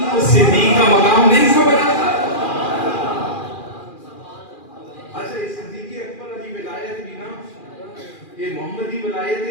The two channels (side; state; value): right; late; 2.4 ms